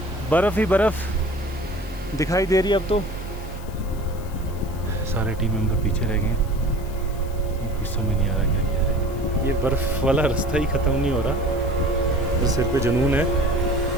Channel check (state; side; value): noise; left; hiss, 21 dB below the sound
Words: बर्फ़ ही बर्फ़ दिखाई दे रही है अब तो। सारे टीम मेंबर पीछे रह गए हैं, कुछ समझ नहीं आ रहा क्या किया है। ये बर्फ़ वाला रास्ता ही ख़त्म नहीं हो रहा, तो सिर पे जुनून है।